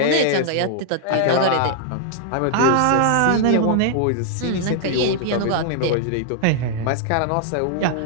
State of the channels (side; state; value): both; different; correlation -0.01